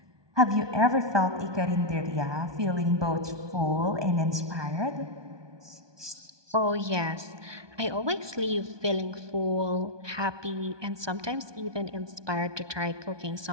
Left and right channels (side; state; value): left; late; 1.2 ms